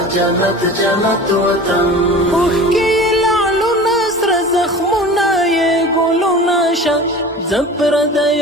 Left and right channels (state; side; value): normal; both; correlation 0.37